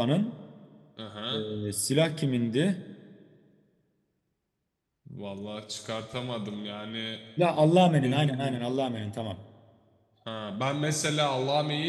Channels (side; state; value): both; identical; correlation 1.00